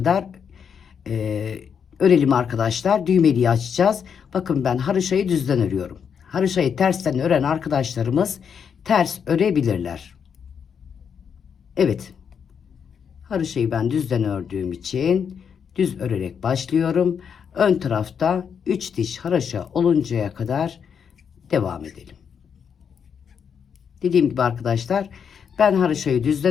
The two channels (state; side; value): quieter; right; 7.1 dB